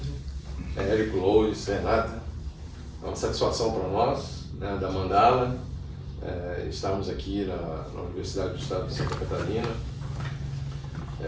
Érico, Lois, Renata. É uma satisfação para nós, né, da Mandala, estarmos aqui na Universidade do Estado de Santa Catarina.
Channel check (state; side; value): identical; both; correlation 1.00